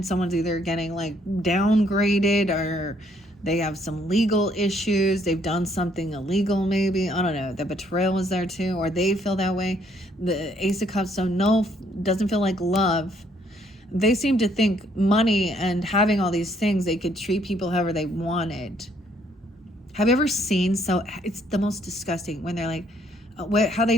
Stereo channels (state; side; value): normal; both; correlation 0.67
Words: someone's either getting like downgraded, or they have some legal issues, they've done something illegal maybe, I don't know, the betrayal was there too, or they feel that way. The Ace of Cups, so no, doesn't feel like love. They seem to think money and having all these things, they could treat people however they wanted. Have you ever seen, so it's the most disgusting when they're like, how